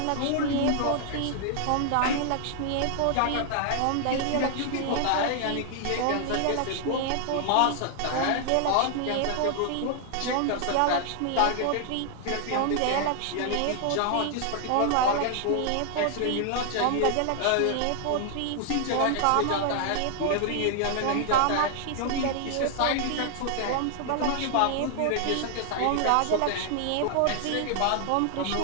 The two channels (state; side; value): different; both; correlation 0.00